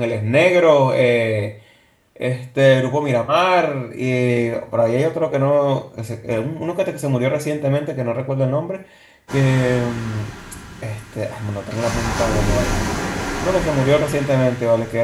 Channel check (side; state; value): both; identical; correlation 1.00